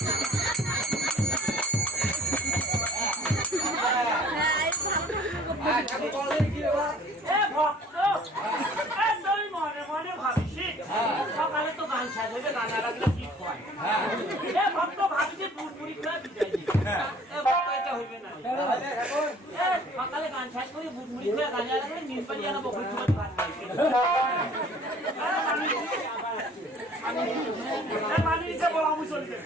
ঠাকুর বলে কি বাবা এ ভক্ত এ তুই মনে মনে ভাবিস সকালে তো গান শেষ হয়ে গান লাগলে কি হয় এ ভক্ত ভাবিস পুরপুরি করে বিদায় দিবি এ ভক্ত এটা হইবে না তাহলে এখন এ সকালে গান শেষ করে পুরপুরি করে গান লাগলে নিন পানি আনা বকরি তোমার ভাত খাইছে আমি নিচে বলা আমি চলছে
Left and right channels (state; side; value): normal; both; correlation 0.51